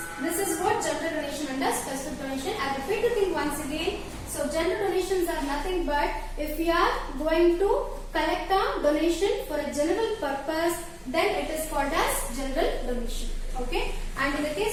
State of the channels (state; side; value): identical; both; correlation 1.00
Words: this is what general donation and specific donation. I repeat the thing once again. So general donations are nothing but if we are going to collect a donation for a general purpose, then it is called as general donation. Okay, and in the